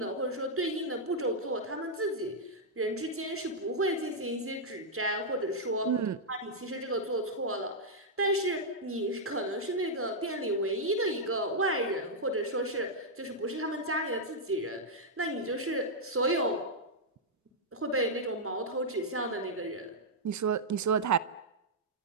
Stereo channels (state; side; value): normal; both; correlation -0.06